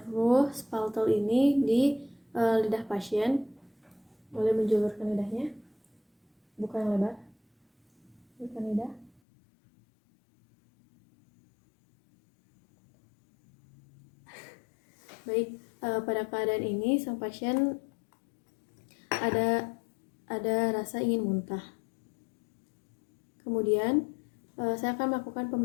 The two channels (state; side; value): drops out; right; at 9.2 s